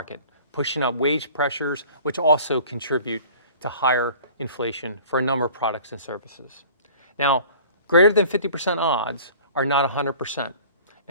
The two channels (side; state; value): both; inverted; correlation -0.47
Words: pushing up wage pressures, which also contribute to higher inflation for a number of products and services. Now, greater than 50% odds are not 100%,